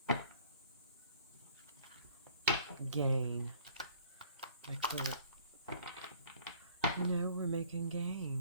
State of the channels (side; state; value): both; inverted; correlation -0.55